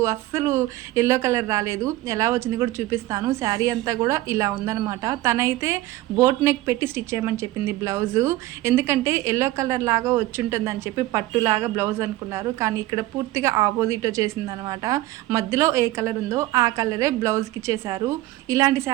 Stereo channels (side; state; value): left; quieter; 17.0 dB